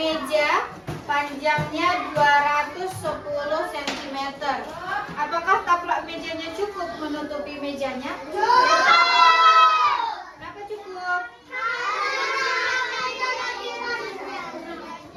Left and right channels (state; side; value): identical; both; correlation 1.00